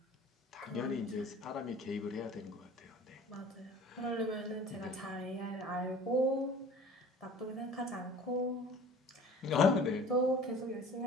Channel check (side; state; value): both; normal; correlation 0.45